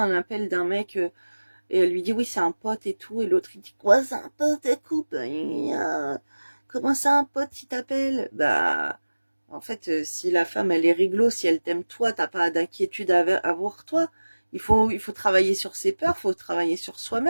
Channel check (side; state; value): both; inverted; correlation -1.00